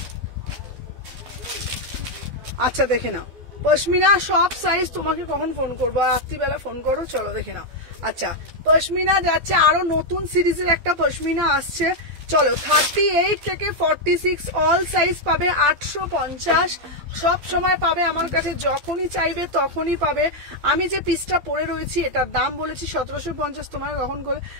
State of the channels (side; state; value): left; late; 12 ms